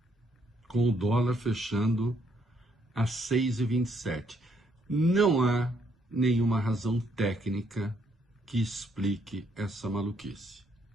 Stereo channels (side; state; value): both; normal; correlation 0.71